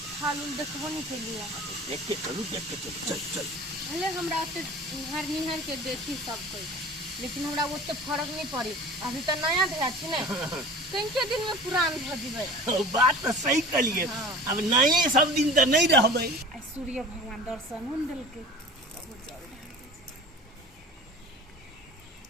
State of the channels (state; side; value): normal; both; correlation 0.40